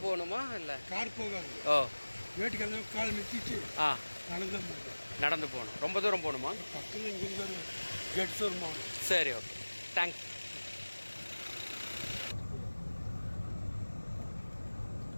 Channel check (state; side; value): inverted; both; correlation -1.00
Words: போகணுமா? இல்லை கார் போகாது. ஓ, வேட்டுக்கு அந்த கால் நிறுத்திட்டு நடந்து போகணும். ரொம்ப தூரம் போகணுமா? பக்கத்தில் இங்கிருந்து ஒரு கேட் வருமா? சரி, ஓகே, தேங்க்ஸ்.